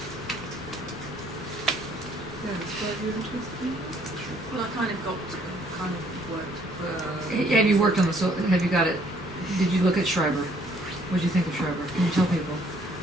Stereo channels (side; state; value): both; normal; correlation 0.64